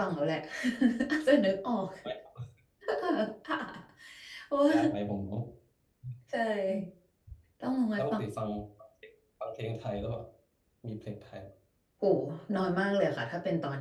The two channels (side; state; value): both; identical; correlation 1.00